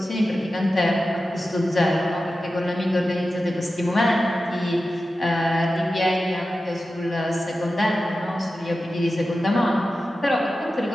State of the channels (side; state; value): both; normal; correlation 0.93